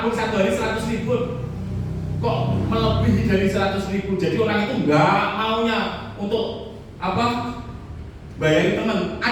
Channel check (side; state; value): both; identical; correlation 1.00